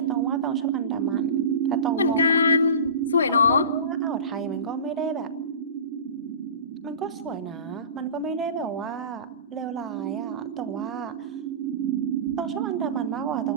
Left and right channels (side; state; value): both; inverted; correlation -0.33